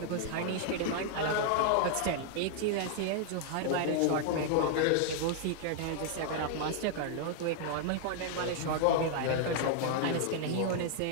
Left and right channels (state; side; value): different; both; correlation 0.00